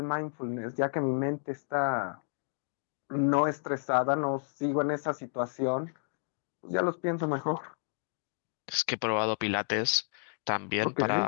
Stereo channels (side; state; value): right; silent; digital silence